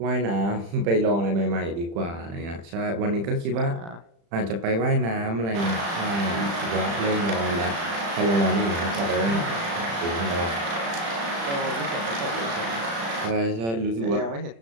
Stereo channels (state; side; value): late; left; 35 ms